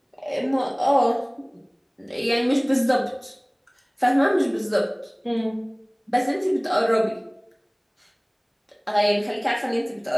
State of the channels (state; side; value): identical; both; correlation 1.00